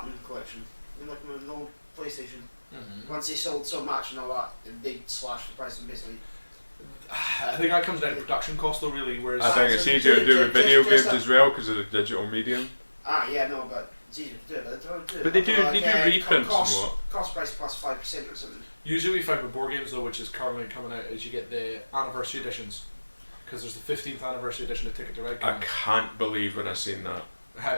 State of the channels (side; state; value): both; inverted; correlation -1.00